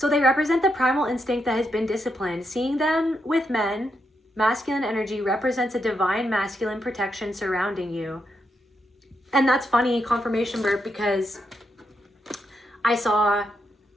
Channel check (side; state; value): both; normal; correlation 0.82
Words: they represent the primal instinct that has been disciplined. Seeing them with men, masculine energy represents a divine masculine protection surrounding you. And that's funny, confirmation burp, because I saw